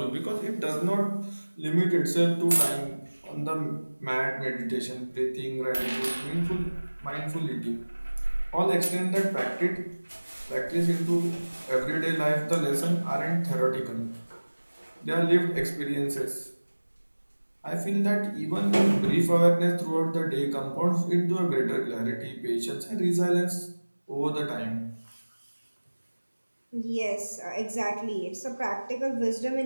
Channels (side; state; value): both; inverted; correlation -1.00